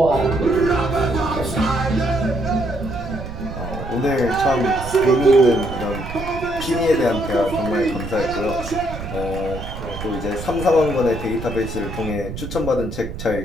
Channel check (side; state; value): right; noise; rumble, 9 dB below the sound